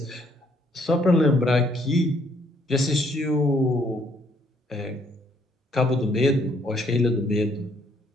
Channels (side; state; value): both; normal; correlation 0.67